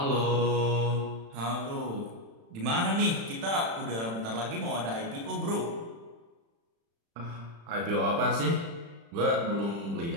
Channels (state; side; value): late; left; 35 ms